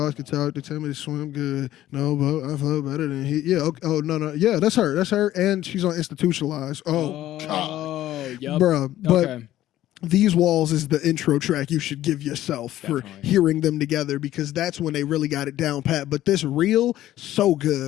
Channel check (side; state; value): right; quieter; 13.8 dB